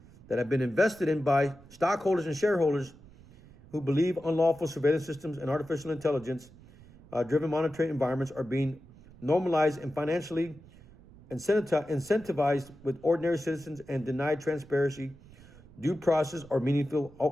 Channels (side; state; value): right; noise; rumble, 22 dB below the sound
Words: that have been invested in by stockholders and shareholders who believe unlawful surveillance systems and artificial intelligence driven monitoring environments are being normalized and financially incentivized with ordinary citizens and denied transparency, due process, or meaningful